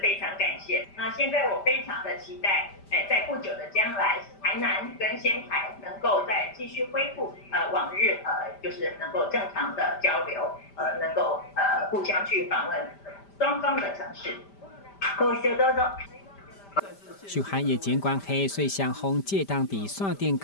非常感谢。那现在我非常的期待，在不久的将来，台南跟仙台能够再继续恢复往日就是能够正常的交流，能够互相去访问双方的城市。ご視聴どうぞ。受限疫情关系，所以双方借当地线顶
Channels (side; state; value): right; late; 5.1 ms